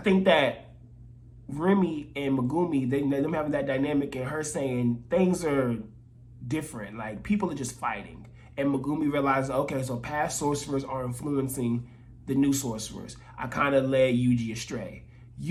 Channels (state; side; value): identical; both; correlation 1.00